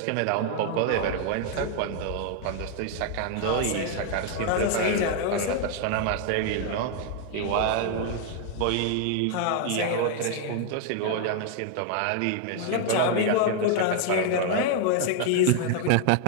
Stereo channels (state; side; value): different; both; correlation 0.00